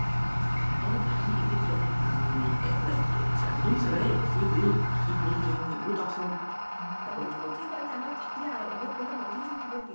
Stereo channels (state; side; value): inverted; both; correlation -1.00